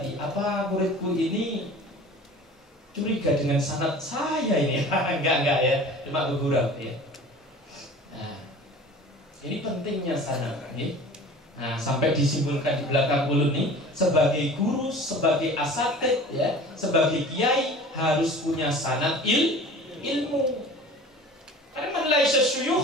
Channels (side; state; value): both; normal; correlation 0.42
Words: apa muridku ini curiga dengan sanad saya ini? Enggak ya, cuma bergurau ya. Nah, ini pentingnya sanad nih. Nah, sampai disimpulkan di belakang ulun nih, sebagai guru, sebagai asatid, ya, sebagai kiai harus punya sanad ilmu. Karena man laisa